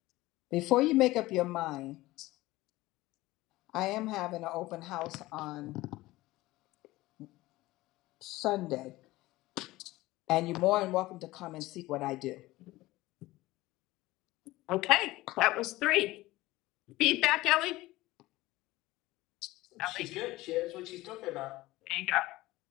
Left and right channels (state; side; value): quieter; right; 18.4 dB